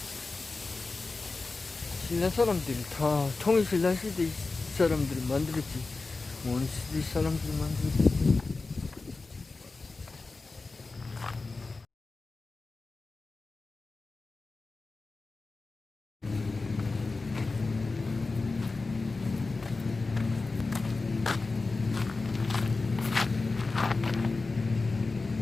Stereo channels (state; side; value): quieter; right; 3.7 dB